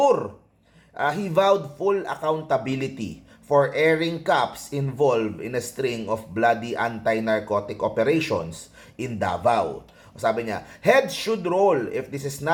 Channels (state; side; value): identical; both; correlation 1.00